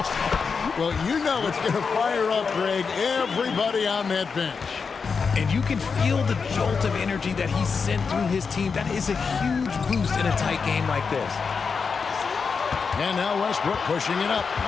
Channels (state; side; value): quieter; right; 5.4 dB